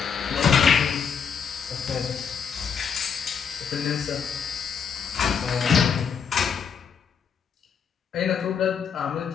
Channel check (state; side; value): quieter; right; 6.8 dB